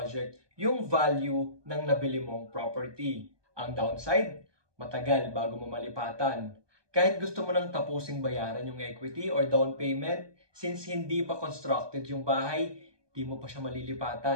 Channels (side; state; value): left; late; 1.2 ms